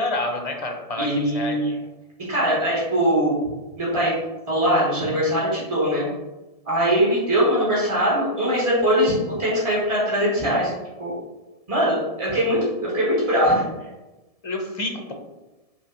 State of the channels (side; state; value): right; late; 1.7 ms